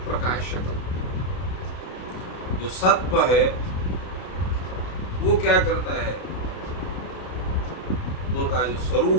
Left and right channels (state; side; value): late; right; 32 ms